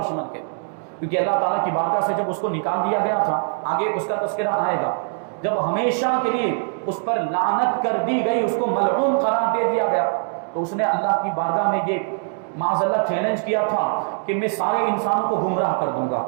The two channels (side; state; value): left; silent; 58 dB below the other